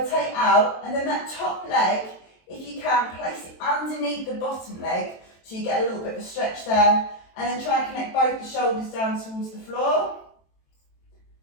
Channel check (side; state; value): right; late; 23 ms